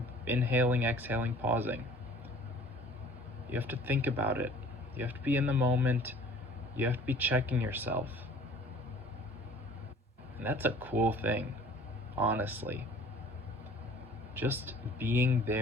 inhaling, exhaling, pausing. You have to think about it. You have to be in the moment. You have to be checking yourself. And that's a cool thing, honestly. Just being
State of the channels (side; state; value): both; normal; correlation 0.50